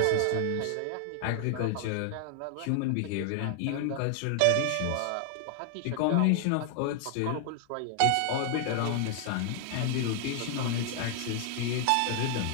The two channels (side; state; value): both; different; correlation 0.00